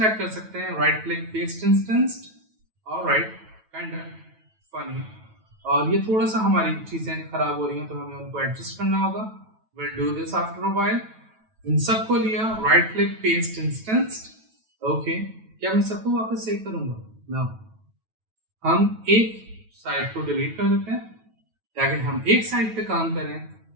कर सकते हैं, right click paste instanced. Alright, kind of funny. और ये थोड़ा सा हमारी चीजें खराब हो रही हैं तो हमें उनको एडजस्ट करना होगा। Will do this after a while. इन सबको लिया, right click paste instanced. Okay, क्या मैं सबको वापस सेव करूंगा? नो, हम एक साइड को डिलीट कर देते हैं ताकि हम एक साइड पे काम करें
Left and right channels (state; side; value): late; left; 9.2 ms